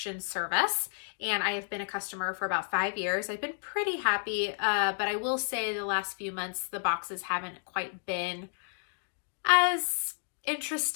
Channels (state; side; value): silent; right; digital silence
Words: service, and I have been a customer for about 5 years. I've been pretty happy, but I will say the last few months, the boxes haven't quite been as